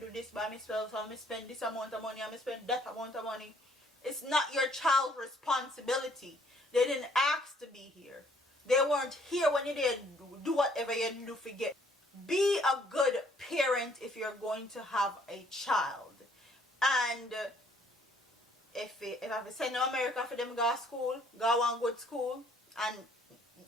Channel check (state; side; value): normal; both; correlation 0.63